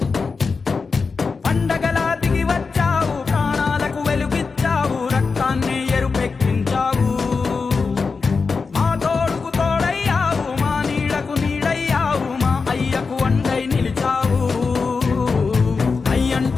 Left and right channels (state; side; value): quieter; right; 4.7 dB